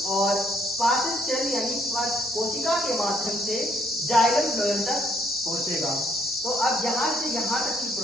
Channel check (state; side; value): normal; both; correlation 0.68